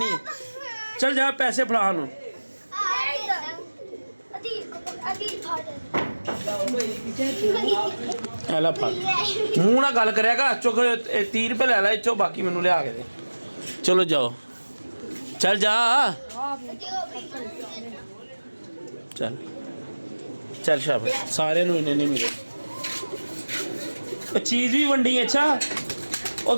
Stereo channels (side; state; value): both; inverted; correlation -1.00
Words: ਹੈ ਚੱਲ ਜਾ ਪੈਸੇ ਫੜਾ ਉਹਨੂੰ ਐਲਾ ਫੜ ਮੂੰਹ ਨਾਲ ਗੱਲ ਕਰਿਆ ਕਰ ਚੁੱਕ 30 ਰੁਪਏ ਲੈ ਲੈ ਇੱਥੋਂ ਬਾਕੀ ਮੈਨੂੰ ਲਿਆ ਕੇ ਦੇ ਚਲੋ ਜਾਓ ਚੱਲ ਜਾ ਚੱਲ ਸ਼ਾਬਾਸ਼ ਸਾਰਿਆਂ ਨੂੰ ਇੰਨੇ ਨਹੀਂ ਮਿਲੇ ਉਹ ਚੀਜ਼ ਵੀ ਵੰਡੀ ਅੱਛਾ ਉਹ